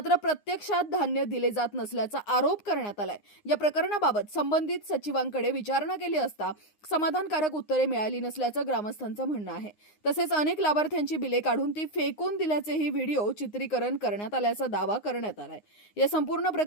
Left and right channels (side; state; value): right; late; 9.7 ms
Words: प्रत्यक्षात धान्य दिले जात नसल्याचा आरोप करण्यात आलाय. या प्रकरणाबाबत संबंधित सचिवांकडे विचारणा केली असता समाधानकारक उत्तरे मिळाली नसल्याचं ग्रामस्थांचं म्हणणं आहे. तसेच अनेक लाभार्थ्यांची बिले काढून ती फेकून दिल्याचेही व्हिडिओ चित्रीकरण करण्यात आल्याचा दावा करण्यात आलाय. या संपूर्ण